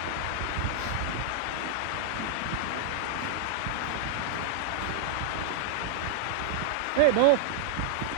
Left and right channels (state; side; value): different; both; correlation -0.01